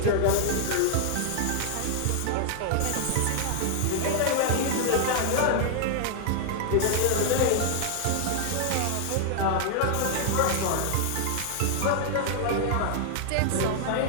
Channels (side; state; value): both; different; correlation 0.00